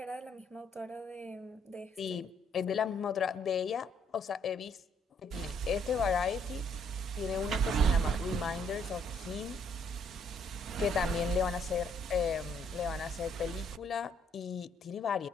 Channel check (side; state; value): both; normal; correlation 0.67